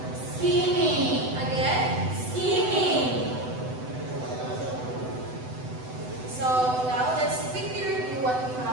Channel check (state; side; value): late; left; 7.9 ms